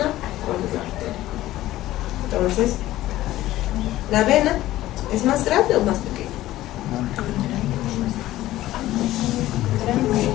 cuál es la arteria. Entonces, ¿la vena es más grande o más pequeña?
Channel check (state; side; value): quieter; right; 15.3 dB